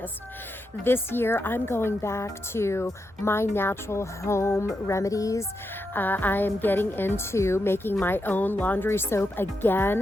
This year, I'm going back to my natural home remedies. I am getting into making my own laundry soap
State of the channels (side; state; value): both; normal; correlation 0.85